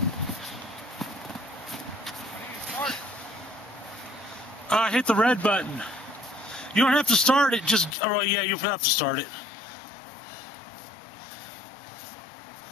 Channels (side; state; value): right; drops out; at 8.0 s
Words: Hit the red button. You don't have to start it, just, oh yeah, you'll have to start it.